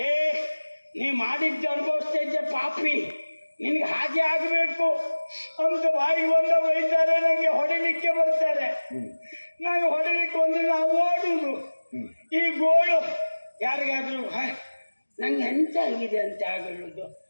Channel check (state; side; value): inverted; both; correlation -1.00